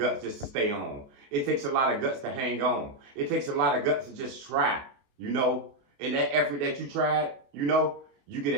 just to stay on. It takes a lot of guts to hang on. It takes a lot of guts to just try, you know. And that effort that you tried, you know, you get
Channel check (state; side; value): late; left; 28 ms